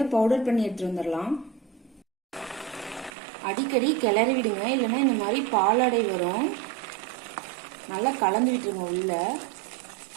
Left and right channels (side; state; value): left; drops out; at 3.1 s